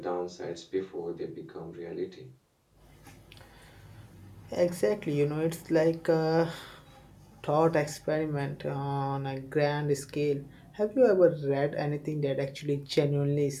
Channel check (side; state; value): both; identical; correlation 1.00